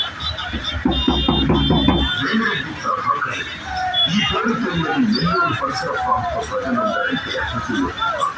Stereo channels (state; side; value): identical; both; correlation 1.00